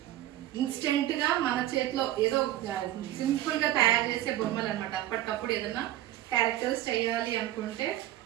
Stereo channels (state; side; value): quieter; left; 14.1 dB